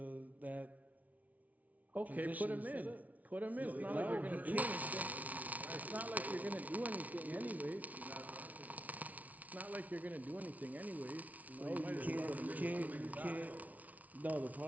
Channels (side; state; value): left; late; 0.072 ms